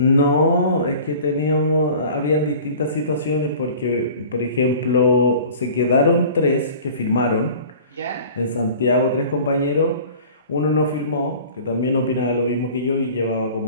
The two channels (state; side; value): inverted; both; correlation -0.44